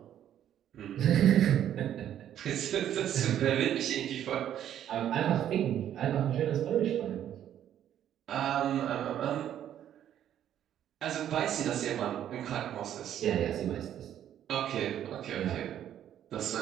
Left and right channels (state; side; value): quieter; left; 10.7 dB